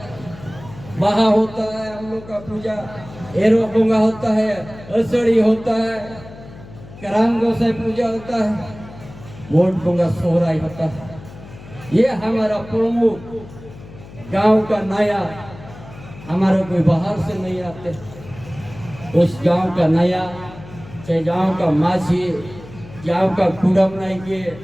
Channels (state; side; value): noise; left; hum, 17 dB below the sound